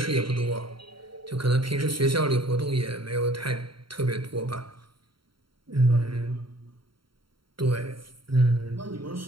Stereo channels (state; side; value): late; left; 0.73 ms